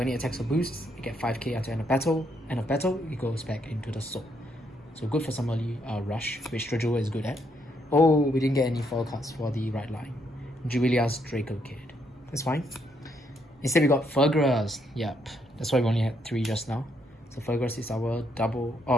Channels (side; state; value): both; normal; correlation 0.74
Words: it attacks or boosts, you get 5k until end of battle. End of battle, it goes back into the soul. So good for some early rush, which Drajeweled is good at. Oh, we didn't get any foil cards for the right line. Jubilia's Draco Kid. That's fine. Instead we got Fergras. Yep, that's why we only had 3 just now. So Fergras is our double,